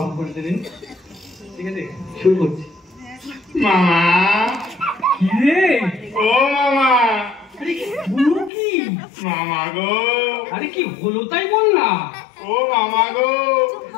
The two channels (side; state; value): right; drops out; at 8.5 s